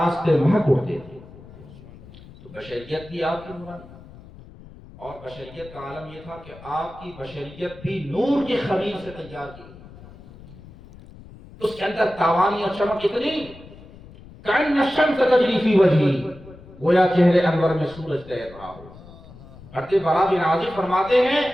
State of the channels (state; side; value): noise; left; rumble, 19 dB below the sound